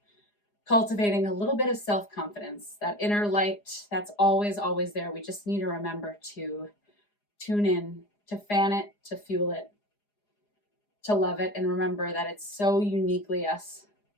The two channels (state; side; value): late; right; 4.9 ms